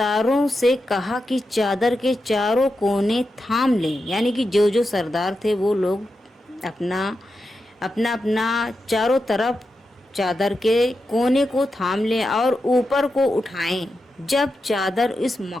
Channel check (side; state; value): both; normal; correlation 0.89